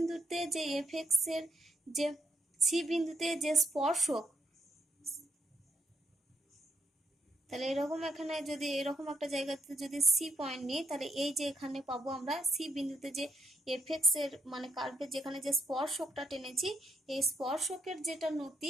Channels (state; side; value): normal; both; correlation 0.76